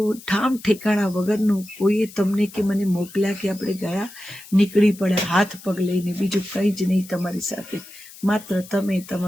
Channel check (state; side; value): noise; left; hiss, 19 dB below the sound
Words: ઠામ ઠેકાણા વગરનું કોઈએ તમને કે મને મોકલ્યા કે આપણે ગયા, નીકળી પડ્યા હાથ પગ લઈને, બીજું કંઈ જ નહીં તમારી સાથે. માત્ર તમે,